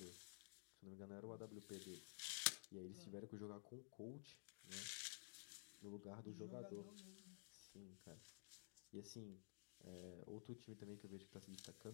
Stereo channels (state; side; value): silent; right; digital silence